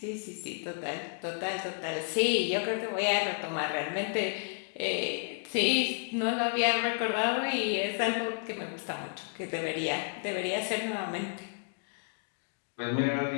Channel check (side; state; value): right; silent; 57 dB below the other